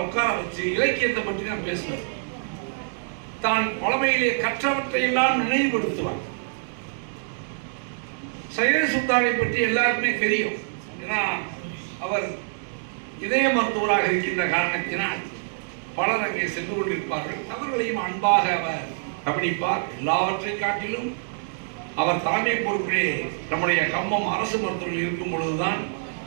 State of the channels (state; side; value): silent; left; digital silence